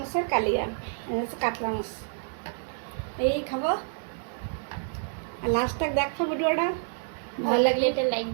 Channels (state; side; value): silent; left; digital silence